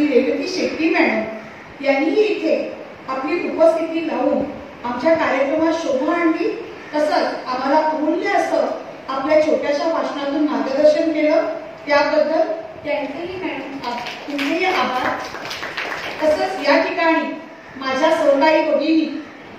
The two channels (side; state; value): both; identical; correlation 1.00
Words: रेवती शेट्टी मॅडम यांनीही इथे आपली उपस्थिती लावून आमच्या कार्यक्रमात शोभा आणली. तसंच आम्हाला अमूल्य असं आपल्या छोट्याशा भाषणातून मार्गदर्शन केलं, त्याबद्दल त्यांचेही आभार. तसंच या ठिकाणी माझ्या सहकारी भगिनी